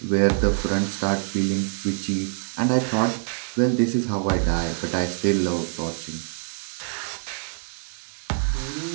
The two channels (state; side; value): silent; left; digital silence